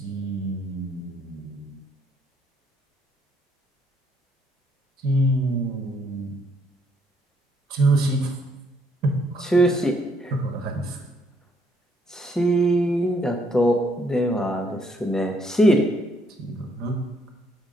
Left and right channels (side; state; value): both; normal; correlation 0.70